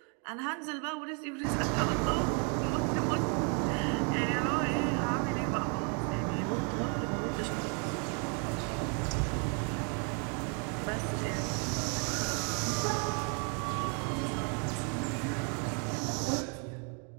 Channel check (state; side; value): quieter; left; 38.2 dB